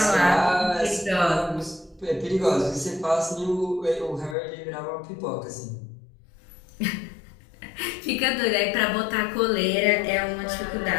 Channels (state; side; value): drops out; right; at 4.4 s